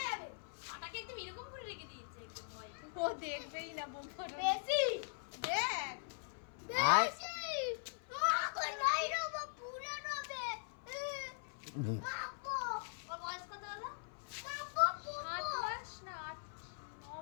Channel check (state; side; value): silent; right; 50 dB below the other